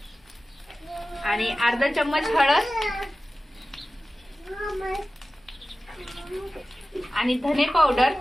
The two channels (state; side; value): normal; both; correlation 0.96